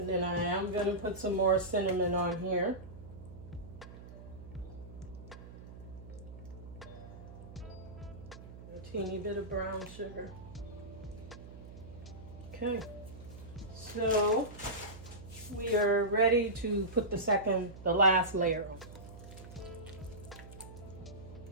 then I am going to put some more cinnamon on here. A teeny bit of brown sugar. Okay, so we are ready to put the last layer on.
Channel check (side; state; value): right; noise; hum, 15 dB below the sound